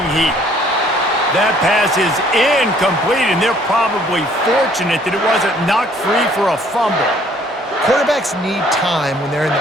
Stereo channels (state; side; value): normal; both; correlation 0.60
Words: heat. That pass is incomplete, and they're probably fortunate that it wasn't knocked free for a fumble. Quarterbacks need time when they're in